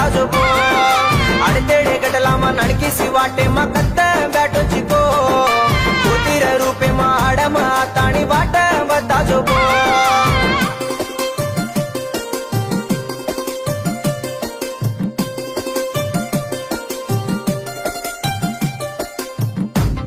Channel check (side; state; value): both; identical; correlation 1.00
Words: जो अडतेडे गटला मा नणकिसी वाटे मकत्त बॅटो